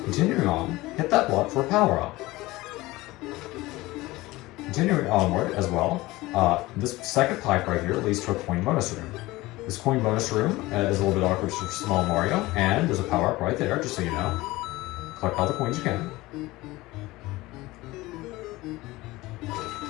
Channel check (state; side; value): quieter; right; 19.6 dB